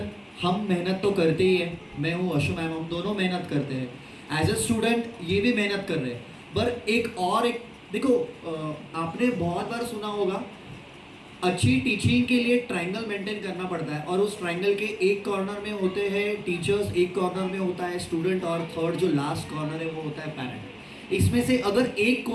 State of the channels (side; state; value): both; identical; correlation 1.00